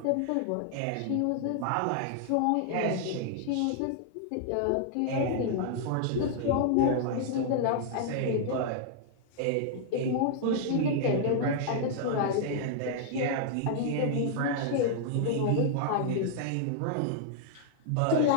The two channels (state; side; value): different; both; correlation -0.01